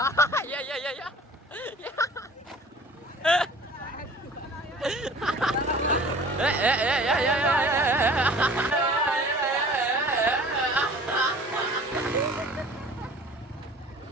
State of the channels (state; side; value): normal; both; correlation 0.46